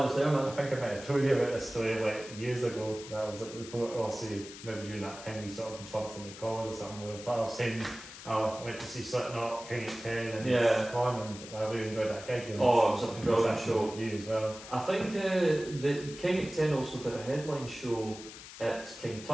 there, man. I think I might have told you about this story like years ago. That was at the point. Also, maybe during that time we sort of bumped into calls or something. I was saying, I went to see Slipknot, King 10, and Con, and I really enjoyed that gig. It was a brilliant show. You as well. I think the King 10 also did a headline show at King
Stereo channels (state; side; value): noise; left; hiss, 14 dB below the sound